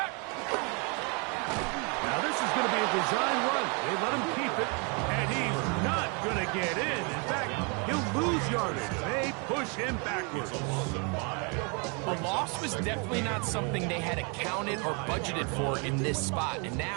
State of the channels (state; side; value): quieter; left; 34.2 dB